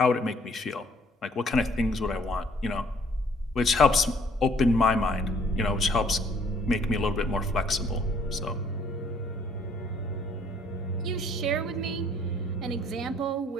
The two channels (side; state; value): both; normal; correlation 0.61